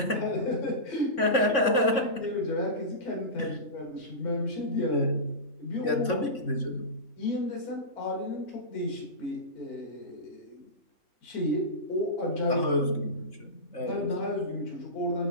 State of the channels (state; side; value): late; right; 3.5 ms